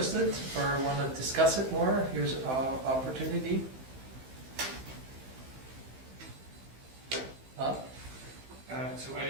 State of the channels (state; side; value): late; left; 15 ms